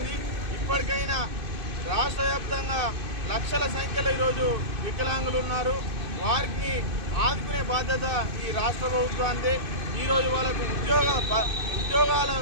ఇప్పటికైనా రాష్ట్ర వ్యాప్తంగా లక్షల సంఖ్యలో ఈరోజు వికలాంగులు ఉన్నారు. వారికి ఆదుకునే బాధ్యత ఈ రాష్ట్ర ప్రభుత్వానికి. ఈరోజు వాళ్ళకు ఉద్యోగాలు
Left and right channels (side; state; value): left; late; 2.5 ms